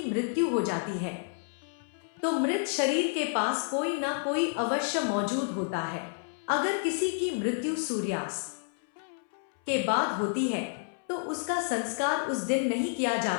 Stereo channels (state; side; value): silent; right; 58 dB below the other